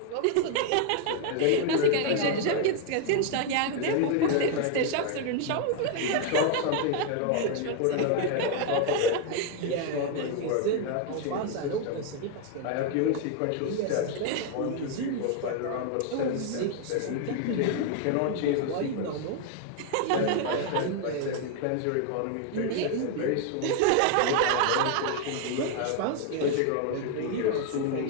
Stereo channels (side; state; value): both; different; correlation 0.00